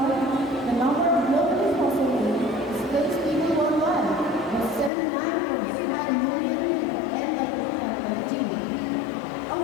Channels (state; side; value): drops out; right; at 4.9 s